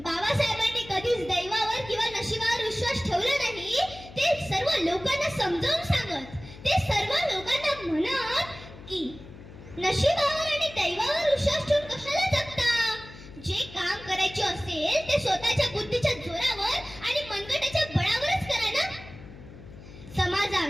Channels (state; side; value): noise; left; hum, 17 dB below the sound